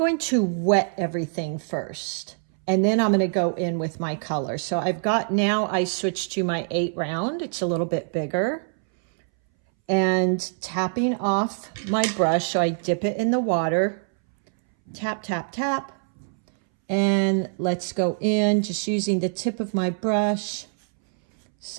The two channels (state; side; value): silent; left; 62 dB below the other